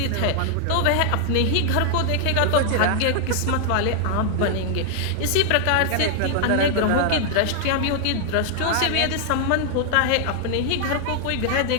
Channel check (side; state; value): both; different; correlation 0.00